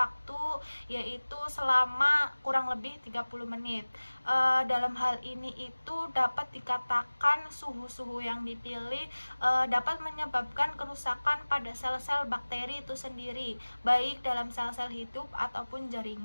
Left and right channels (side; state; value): both; inverted; correlation -1.00